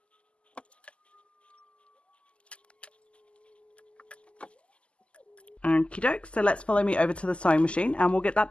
Okie doke, so let's follow me over to the sewing machine and we'll get that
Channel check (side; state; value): right; late; 0.055 ms